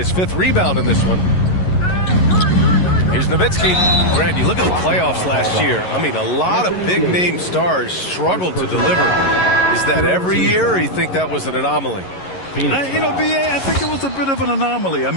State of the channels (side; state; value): right; late; 11 ms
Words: 5th rebound in this one. Here's Nowitzki. Grant, you look at the playoffs last year. I mean, a lot of big-name stars struggled to deliver. Is that every year, or you think that was an anomaly? BA, I think it was a bit of an anomaly. I